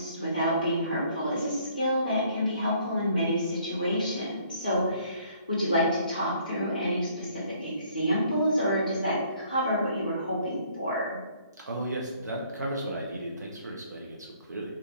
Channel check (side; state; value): both; inverted; correlation -0.62